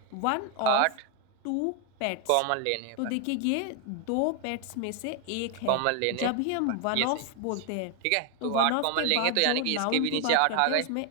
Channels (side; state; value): both; different; correlation 0.01